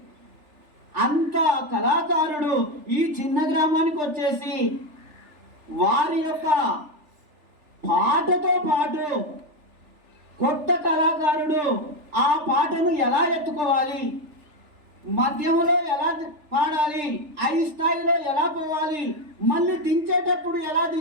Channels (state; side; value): late; left; 3.4 ms